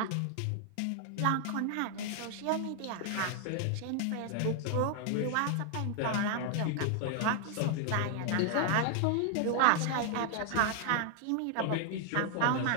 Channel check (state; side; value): different; both; correlation 0.00